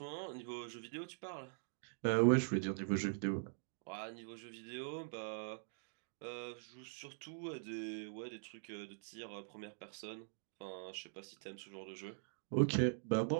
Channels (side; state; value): left; silent; digital silence